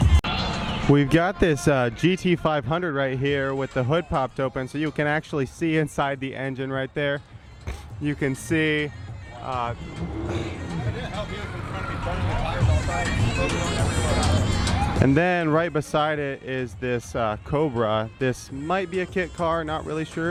We've got this GT500 right here with the hood popped open, so you can actually see inside the engine right there. You can see and then right beside it is this Cobra. This might be a kit car, not really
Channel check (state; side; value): identical; both; correlation 1.00